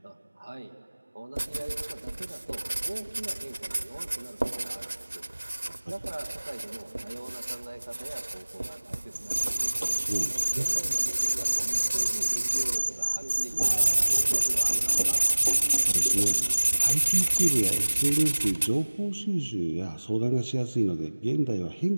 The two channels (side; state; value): both; inverted; correlation -1.00